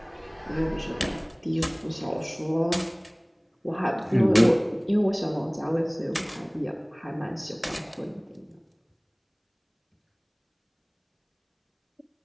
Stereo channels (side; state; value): both; identical; correlation 1.00